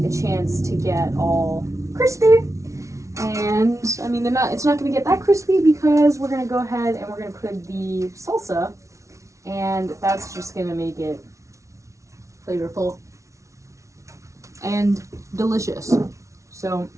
a chance to get all crispy. And I mean, it's not going to get that crispy because we're going to go ahead and we're going to put the salsa, and that's just going to make it flavorful and delicious. So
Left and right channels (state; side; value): late; left; 0.14 ms